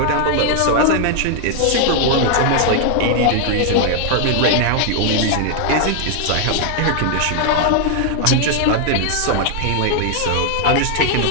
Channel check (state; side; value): different; both; correlation 0.00